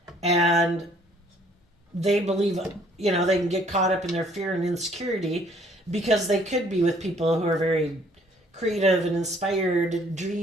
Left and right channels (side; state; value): both; normal; correlation 0.61